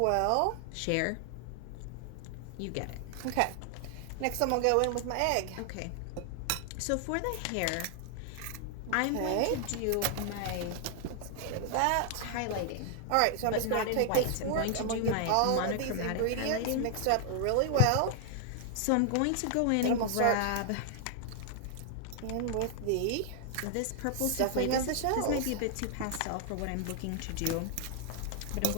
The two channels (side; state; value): both; different; correlation 0.00